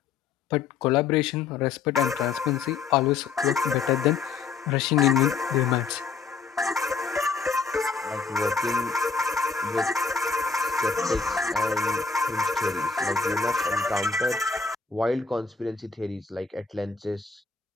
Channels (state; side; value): quieter; right; 5.2 dB